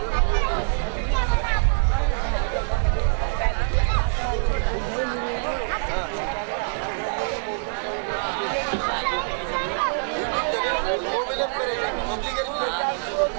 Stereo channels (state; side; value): silent; left; digital silence